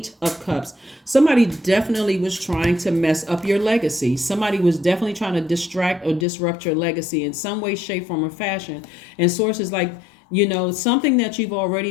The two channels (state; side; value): drops out; right; at 6.2 s